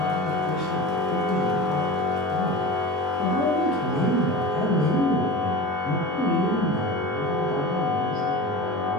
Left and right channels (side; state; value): both; normal; correlation 0.32